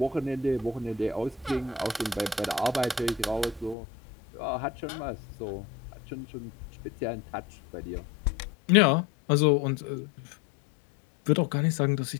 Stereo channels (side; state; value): right; drops out; at 3.8 s